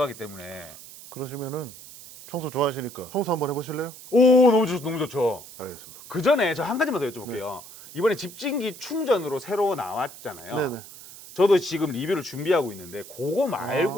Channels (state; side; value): noise; right; hiss, 16 dB below the sound